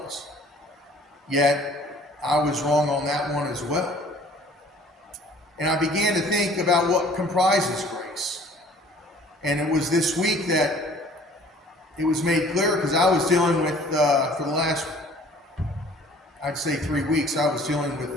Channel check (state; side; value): normal; both; correlation 0.53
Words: was. Yet, I was wrong on that one as well. And I began to think about what comprises grace. And it was this week that it was made clear, because I was dealing with, for the last, I'd say 3 weeks, I was dealing